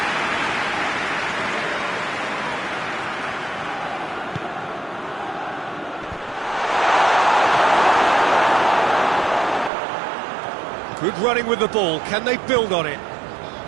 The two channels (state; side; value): drops out; left; at 9.7 s